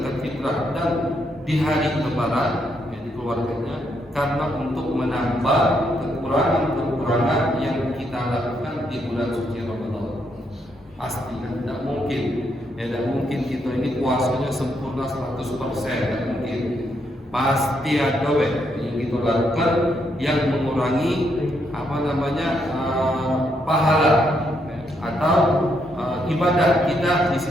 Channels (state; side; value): normal; both; correlation 0.77